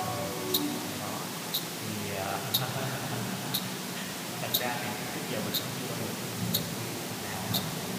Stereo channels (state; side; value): identical; both; correlation 1.00